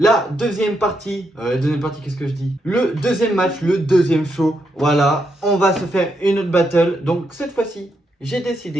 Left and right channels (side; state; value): both; normal; correlation 0.80